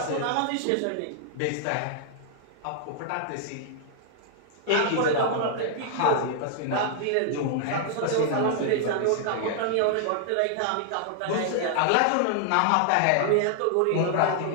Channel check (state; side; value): different; both; correlation -0.01